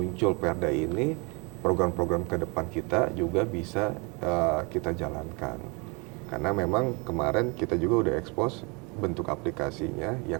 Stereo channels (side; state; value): left; quieter; 30.1 dB